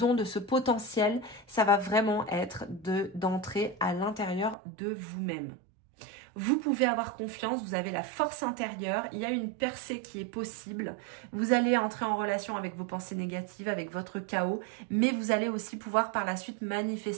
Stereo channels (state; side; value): drops out; left; at 4.5 s